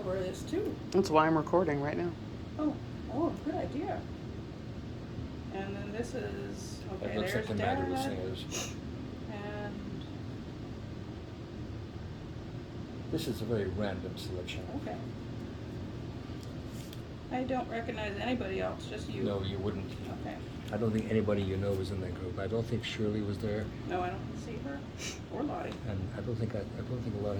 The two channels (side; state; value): both; identical; correlation 1.00